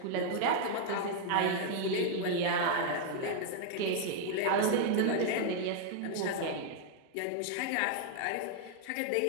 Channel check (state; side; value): different; both; correlation 0.00